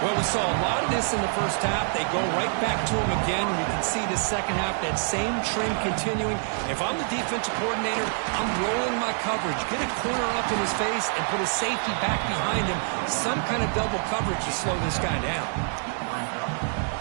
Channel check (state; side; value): silent; left; 61 dB below the other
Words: we saw a lot of this in the first half. They go right back to him again. We can see the second half, that same trend continuing. If I'm the defensive coordinator, I'm rolling my coverage. Get a corner up in his face and put a safety back behind him. Some kind of double coverage to slow this guy down.